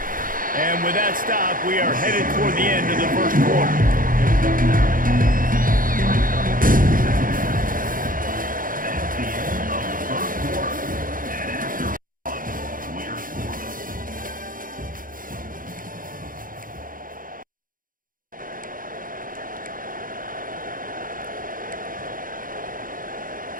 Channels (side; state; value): left; late; 0.40 ms